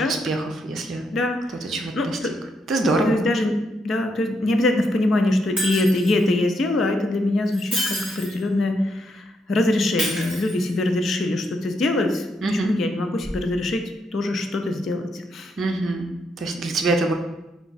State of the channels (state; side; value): normal; both; correlation 0.78